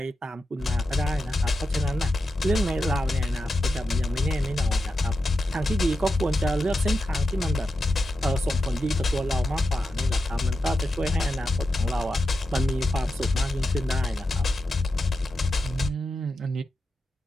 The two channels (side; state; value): both; normal; correlation 0.89